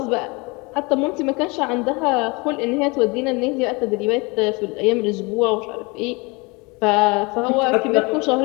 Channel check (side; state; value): right; quieter; 27.3 dB